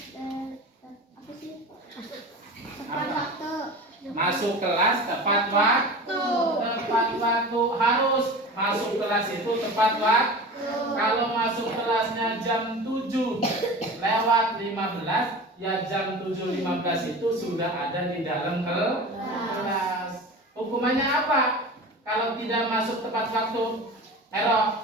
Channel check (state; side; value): normal; both; correlation 0.34